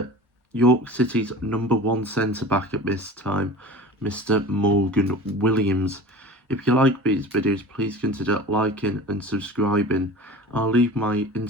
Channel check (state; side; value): normal; both; correlation 0.37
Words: City's number one centre-back at this time, Mr. Morgan Williams. If you like these videos, please consider liking and subscribing. I'll leave my